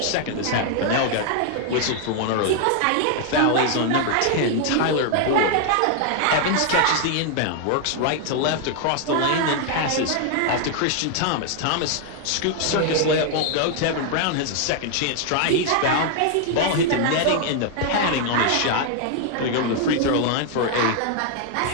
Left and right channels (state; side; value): different; both; correlation 0.00